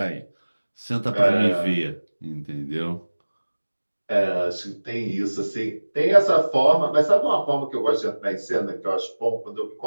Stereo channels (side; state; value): both; inverted; correlation -1.00